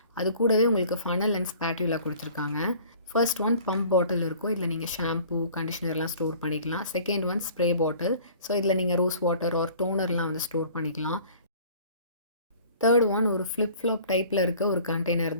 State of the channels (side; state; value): both; inverted; correlation -0.49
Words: அது கூடவே உங்களுக்கு ஃபனல் அண்ட் ஸ்பாட்யூலா குடுத்துருக்காங்க. ஃபர்ஸ்ட் ஒன் பம்ப் பாட்டில் இருக்கும். இதில நீங்க ஷாம்பூ, கண்டிஷனர்லாம் ஸ்டோர் பண்ணிக்கலாம். Second one spray bottle. So இதில நீங்க ரோஸ் வாட்டர் ஆர் டோனர்லாம் வந்து ஸ்டோர் பண்ணிக்கலாம். தேர்ட் ஒன் ஒரு ஃப்ளிப் ஃப்ளாப் டைப்பில் இருக்க ஒரு கண்டெய்னர்